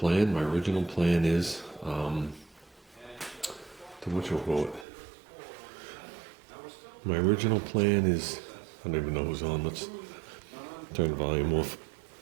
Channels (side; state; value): left; drops out; at 4.9 s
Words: My original plan is, My original plan is, I don't even know who's on. Let's turn the volume off.